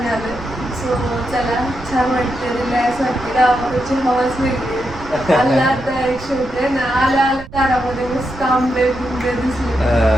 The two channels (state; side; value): noise; right; rumble, 16 dB below the sound